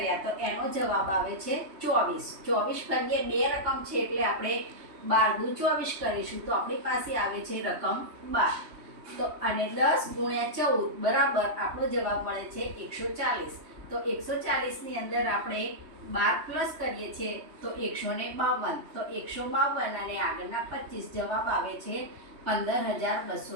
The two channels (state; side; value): late; left; 3.2 ms